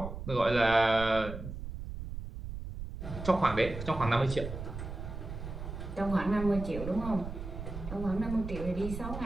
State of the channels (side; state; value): right; noise; rumble, 8 dB below the sound